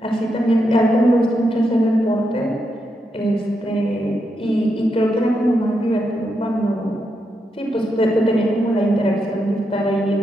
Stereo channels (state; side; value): normal; both; correlation 0.83